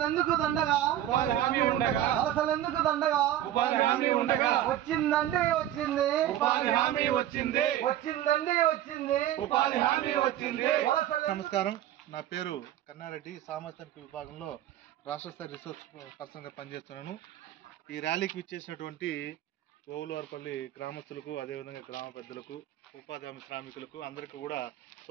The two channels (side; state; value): left; quieter; 12.5 dB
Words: దండగా వలసలెందుకు దండగా వచ్చిందంటే వచ్చింది ఉపాధి హామీ వచ్చింది వచ్చిందండి వచ్చింది ఉపాధి హామీ వచ్చింది. నమస్కారం, నా పేరు కన్నారెడ్డి. సామాజిక విభాగంలో రాష్ట్ర స్థాయి రిసోర్స్ పర్సన్గా పనిచేస్తున్నాను. ఈ ర్యాలీకి విచ్చేసినటువంటి ఓవులవారిపల్లి గ్రామస్తులకు, అదేవిధంగా గ్రామ పెద్దలకు, ఉపాధి హామీ శ్రామికులకు అందరికీ కూడా